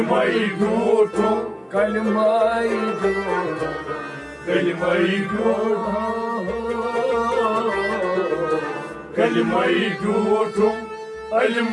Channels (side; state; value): both; identical; correlation 1.00